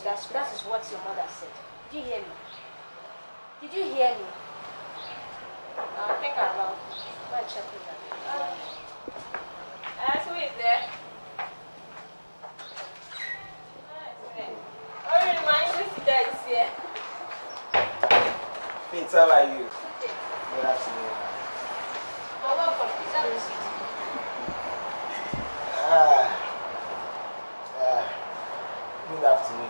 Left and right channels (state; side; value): inverted; both; correlation -1.00